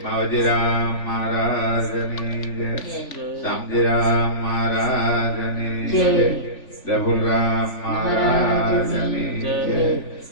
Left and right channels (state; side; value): late; right; 3.5 ms